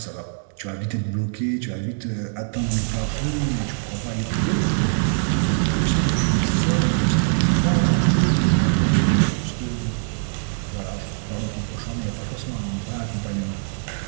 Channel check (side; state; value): left; silent; digital silence